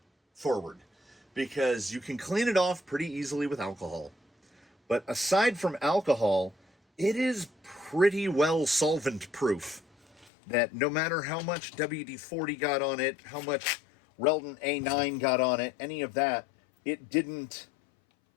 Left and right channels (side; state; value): right; drops out; at 10.3 s